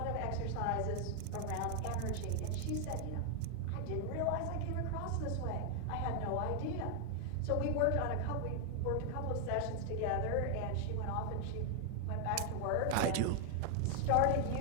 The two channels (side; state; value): both; different; correlation 0.00